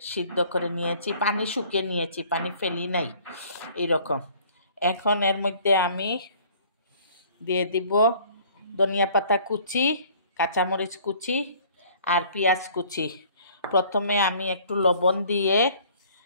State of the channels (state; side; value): inverted; both; correlation -0.54